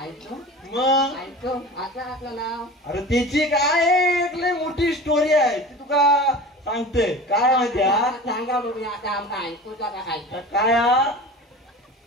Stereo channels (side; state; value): both; normal; correlation 0.35